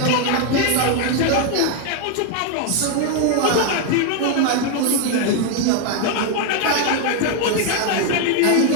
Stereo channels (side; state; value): both; different; correlation 0.01